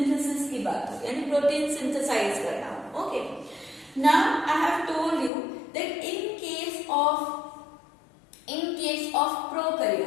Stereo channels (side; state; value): right; drops out; at 5.3 s